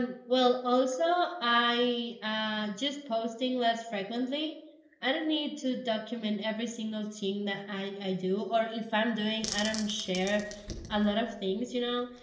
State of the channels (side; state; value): both; identical; correlation 1.00